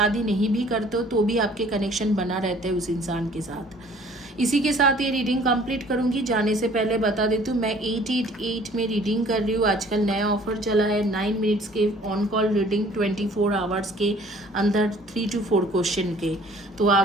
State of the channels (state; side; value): normal; both; correlation 0.54